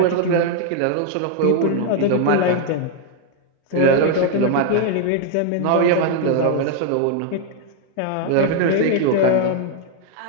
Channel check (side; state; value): both; different; correlation 0.00